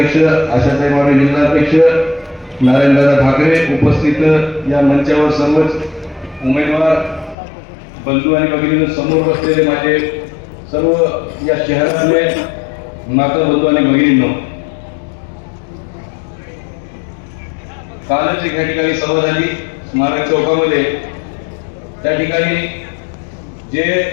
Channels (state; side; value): drops out; right; at 7.4 s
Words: आशाताई वाणी जिल्हाध्यक्ष, नारायणदादा ठाकरे, उपस्थित या मंचावर सर्वच उमेदवार बंधू आणि भगिनी, समोर बसलेले माझे सर्व या शहरातले माता बंधू आणि भगिनींनो, कालच या ठिकाणी सभा झाली स्मारक चौकामध्ये. त्या ठिकाणी जे